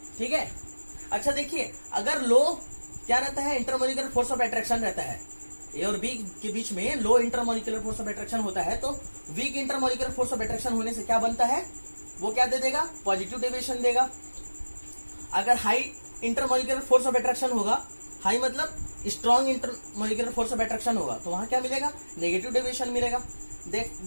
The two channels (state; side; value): inverted; both; correlation -1.00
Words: ठीक है, अच्छा देखिए, अगर लो क्या रहता है, इंटरमोलिकुलर फोर्स ऑफ अट्रैक्शन रहता है, ए और बी के बीच में low intermolecular force of attraction होता है, तो weak intermolecular force of attraction होने से क्या बनता है, वो क्या दे देगा, पॉजिटिव डेविएशन देगा। अगर high intermolecular force of attraction होगा, हाई मतलब strong intermolecular force of attraction होगा, तो वहां क्या मिलेगा, नेगेटिव डेविएशन मिलेगा।